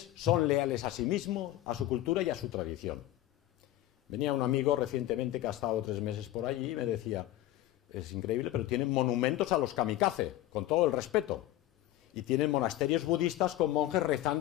son leales a sí mismos, a su cultura y a su tradición. Venía un amigo recientemente que ha estado 3 meses por allí y me decía: es increíble, pero tienen monumentos a los kamikaze, con todo el respeto. Y tienen monasterios budistas con monjes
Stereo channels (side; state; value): right; quieter; 14.8 dB